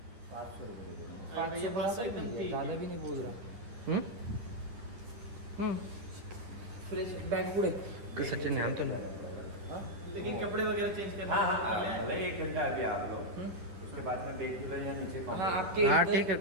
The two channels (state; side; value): late; left; 10 ms